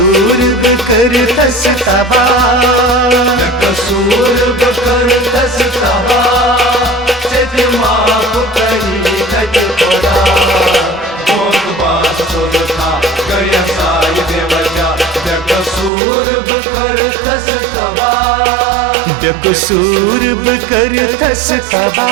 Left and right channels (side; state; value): left; drops out; at 15.9 s